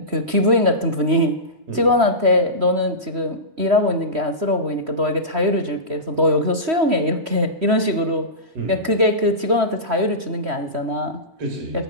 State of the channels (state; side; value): late; left; 3.1 ms